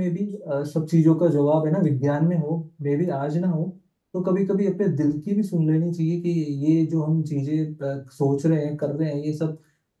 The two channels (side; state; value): both; identical; correlation 1.00